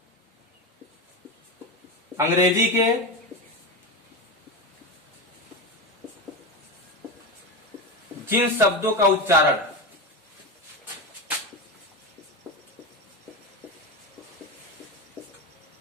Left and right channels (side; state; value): both; normal; correlation 0.18